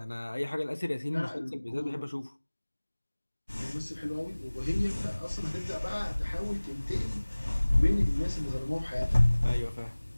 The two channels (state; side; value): inverted; both; correlation -1.00